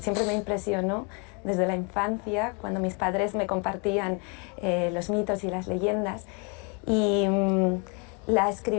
siempre me impresionó desde la infancia, cuando mis padres me compartían los mitos y las leyendas. Y la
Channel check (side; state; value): right; quieter; 34.8 dB